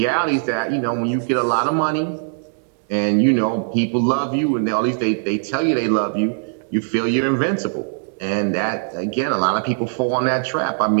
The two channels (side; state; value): left; silent; digital silence